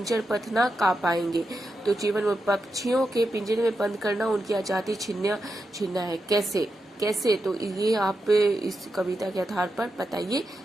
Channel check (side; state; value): both; normal; correlation 0.87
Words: पथ ना का पाएंगे। तो जीवन मूल्य, पक्षियों के पिंजरे में बंद करना उनकी आजादी छीनना है। कैसे तो ये आप इस कविता के आधार पर बताइए।